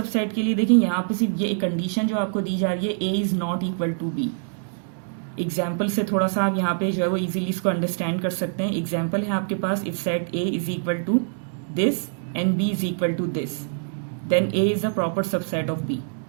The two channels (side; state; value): left; silent; digital silence